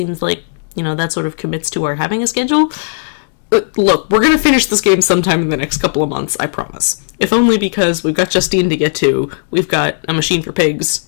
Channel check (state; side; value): silent; right; digital silence